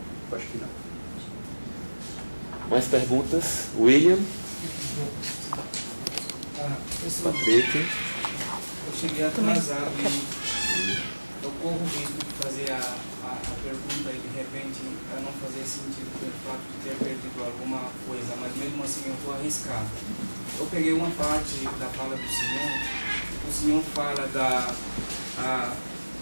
Eu acho que não. Mais perguntas? William? Patrick? Eu cheguei atrasado e eu corro o risco de fazer a pergunta e de repente não fazer sentido pelo fato de ter perdido alguma coisa, mas mesmo assim eu vou arriscar. Eu peguei uma parte da fala do senhor, o senhor fala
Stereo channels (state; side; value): inverted; both; correlation -1.00